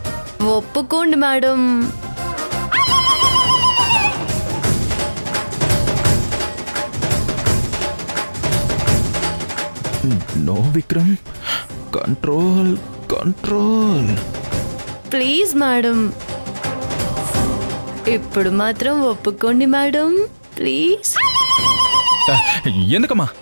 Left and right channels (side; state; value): both; inverted; correlation -1.00